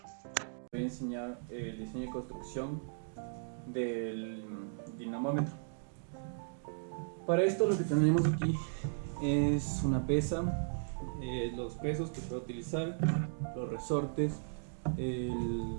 Voy a enseñar el diseño y construcción del dinamómetro. Para esto lo que tenemos aquí es una pesa, los pesos que puedo utilizar, los resortes,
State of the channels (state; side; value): silent; left; digital silence